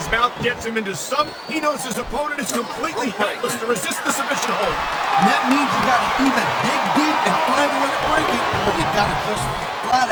mouth gets him into some. He knows his opponent is completely helpless to resist the submission hold. And that means you gotta either dig deep and find a way to break it, or you gotta just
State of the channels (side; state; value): both; identical; correlation 1.00